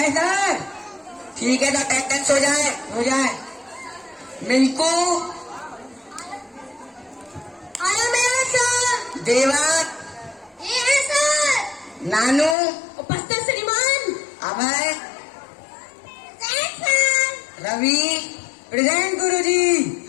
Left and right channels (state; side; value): drops out; right; at 12.6 s